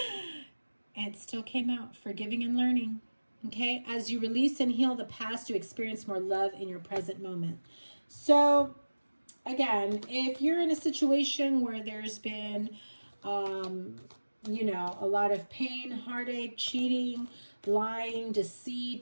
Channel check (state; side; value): inverted; both; correlation -1.00